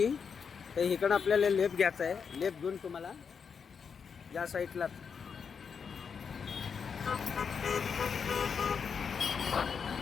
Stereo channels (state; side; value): quieter; right; 6.3 dB